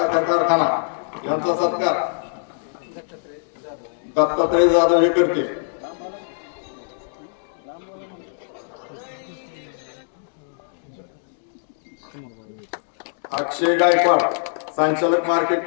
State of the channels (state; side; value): silent; right; digital silence